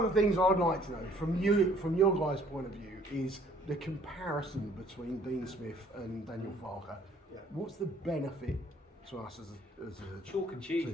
of the things I'd like to know from your guys' point of view is the comparison between Dean Smith and Daniel Farke. What's the benefit to us as a chalk and cheese team?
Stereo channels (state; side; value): normal; both; correlation 0.59